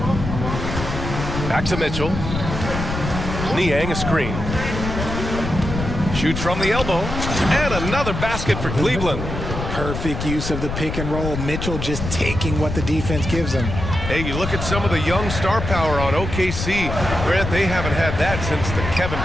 Back to Mitchell. Niang a screen. Shoots from the elbow. And another basket for Cleveland. Perfect use of the pick and roll. Mitchell just taking what the defense gives him. Hey, you look at some of the young star power on OKC. Grant, they haven't had that since the Kevin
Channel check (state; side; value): noise; left; rumble, 5 dB below the sound